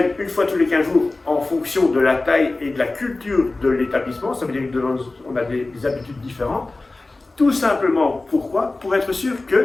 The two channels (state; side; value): quieter; right; 3.2 dB